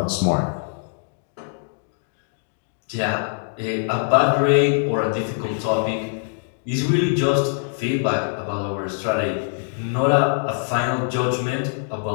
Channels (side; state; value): right; silent; digital silence